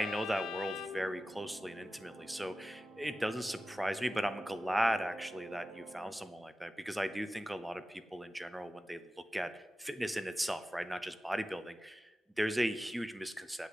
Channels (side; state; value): both; normal; correlation 0.94